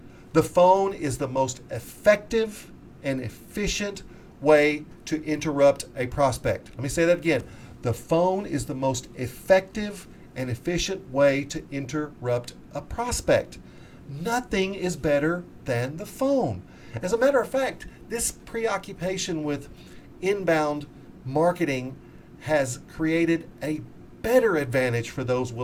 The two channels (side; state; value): both; identical; correlation 1.00